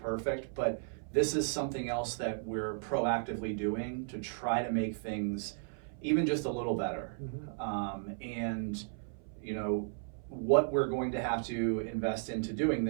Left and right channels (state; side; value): silent; left; 55 dB below the other